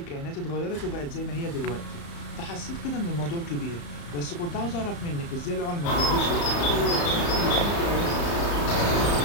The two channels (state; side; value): late; right; 35 ms